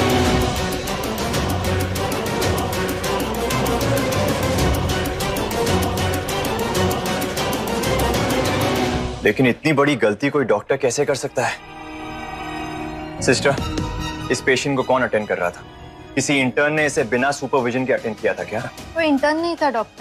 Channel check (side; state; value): both; identical; correlation 1.00